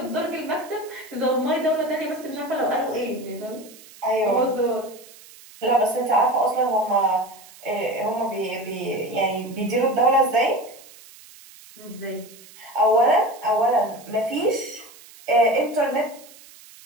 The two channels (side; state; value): right; noise; hiss, 21 dB below the sound